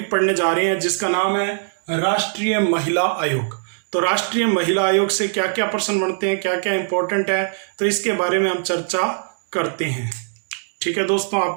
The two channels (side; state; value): left; silent; 65 dB below the other